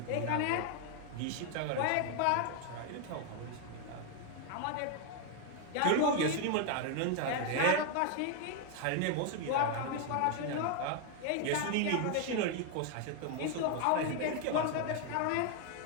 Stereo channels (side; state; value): both; different; correlation 0.01